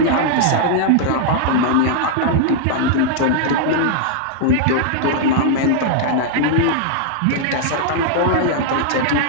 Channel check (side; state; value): both; different; correlation -0.01